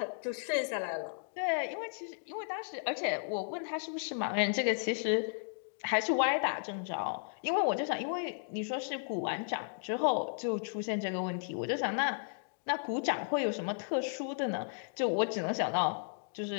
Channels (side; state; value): right; silent; digital silence